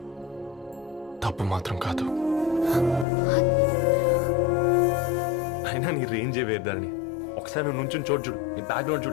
తప్పు మాత్రం కాదు. అయినా నీ రేంజే వేరు ధరణి. ఒకసారి నువ్వు నుంచుని చూడు, నీ బ్యాక్గ్రౌండ్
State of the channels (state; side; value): drops out; right; at 3.1 s